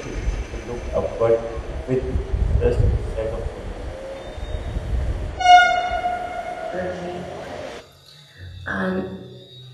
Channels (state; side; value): identical; both; correlation 1.00